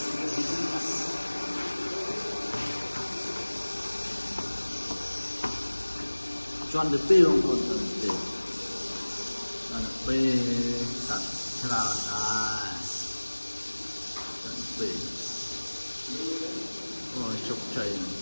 chọn được tiêu không còn được chọn được bê sạch thế nào này chọn bê rồi chụp chảy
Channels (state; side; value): inverted; both; correlation -1.00